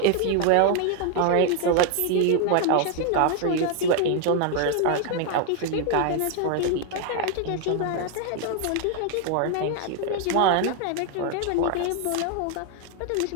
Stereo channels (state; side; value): different; both; correlation 0.00